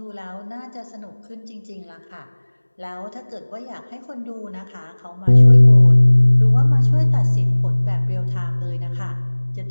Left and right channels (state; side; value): inverted; both; correlation -1.00